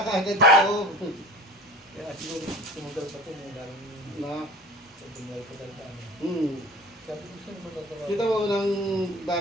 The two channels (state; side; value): normal; both; correlation 0.41